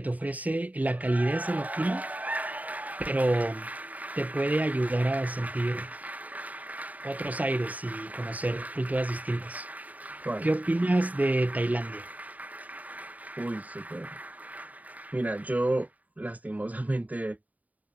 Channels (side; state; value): left; late; 0.073 ms